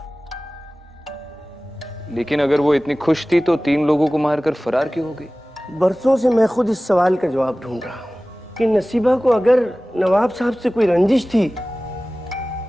लेकिन अगर वो इतनी खुश थी तो 3 लोगों को मारकर फरार क्यों हो गई? बरसों से मैं खुद इस सवाल का जवाब ढूंढ रहा हूं कि नसीबा को अगर नवाब साहब से कोई रंजिश थी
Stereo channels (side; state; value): both; normal; correlation 0.97